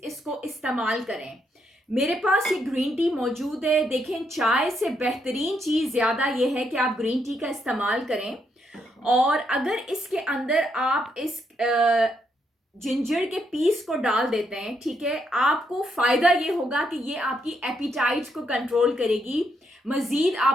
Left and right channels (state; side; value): normal; both; correlation 0.77